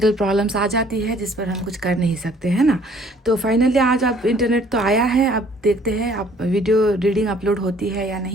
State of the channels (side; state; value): both; normal; correlation 0.58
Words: प्रॉब्लम्स आ जाती है जिस पर हम कुछ कर नहीं सकते हैं ना। तो फाइनली आज अब इंटरनेट तो आया है, अब देखते हैं अब वीडियो रीडिंग अपलोड होती है या